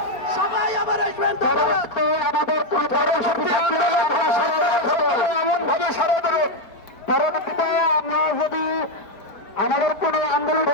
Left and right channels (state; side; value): late; right; 4.6 ms